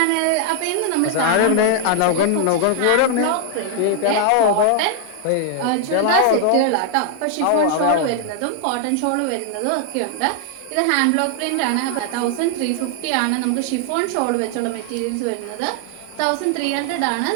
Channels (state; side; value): different; both; correlation 0.00